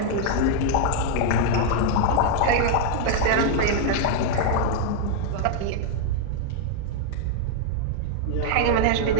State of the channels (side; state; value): both; different; correlation 0.00